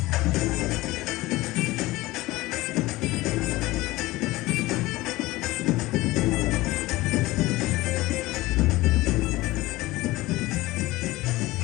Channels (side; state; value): right; quieter; 19.1 dB